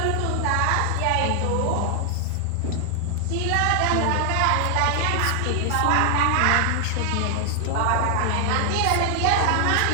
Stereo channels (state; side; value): different; both; correlation 0.00